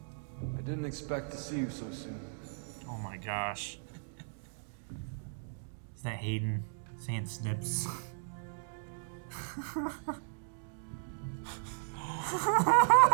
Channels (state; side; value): silent; left; digital silence